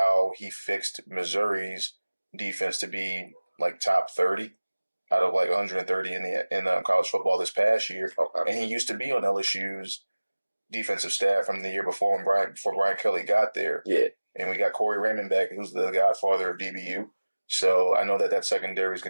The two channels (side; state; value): both; inverted; correlation -1.00